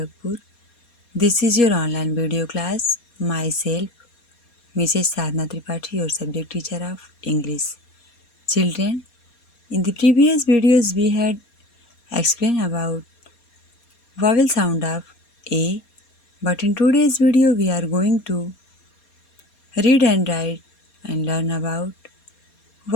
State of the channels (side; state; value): right; late; 4.2 ms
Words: This is your online video class. Myself, Mrs. Sadhna Tripathi, your subject teacher of English. Children, in the previous videos we had explained about vowel sound of A, but in today's video we are going to read and write and learn about